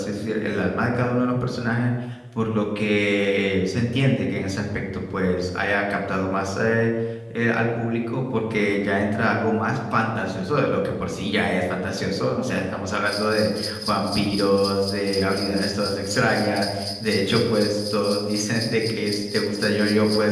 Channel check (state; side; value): identical; both; correlation 1.00